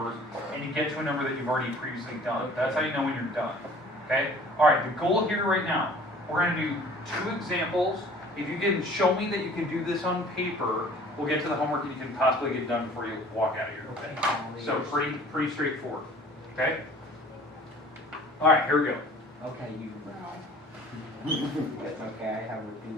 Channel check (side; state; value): both; normal; correlation 0.49